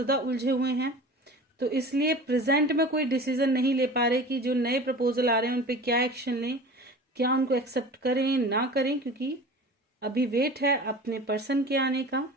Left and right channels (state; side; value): normal; both; correlation 0.38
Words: उलझे हुए हैं, तो इसलिए प्रेजेंट में कोई डिसीजन नहीं ले पा रहे कि जो नए प्रपोजल आ रहे हैं उन पे क्या एक्शन लें, क्या उनको एक्सेप्ट करें ना करें, क्योंकि अभी वेट है अपने पर्सन के आने का,